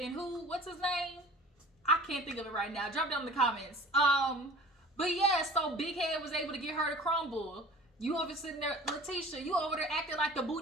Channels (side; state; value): both; normal; correlation 0.43